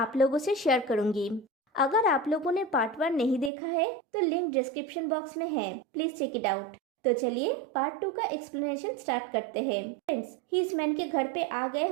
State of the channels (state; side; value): drops out; left; at 3.5 s